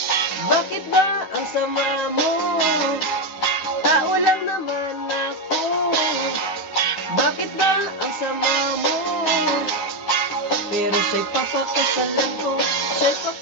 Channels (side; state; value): right; late; 11 ms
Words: Bakit ba ang sama mo? Tao lang naman ako. Bakit ba ang sama mo? Pero siya'y papakasalan ko, siya'y